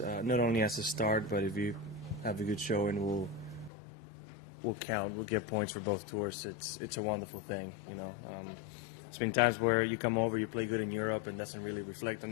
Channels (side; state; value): right; drops out; at 3.7 s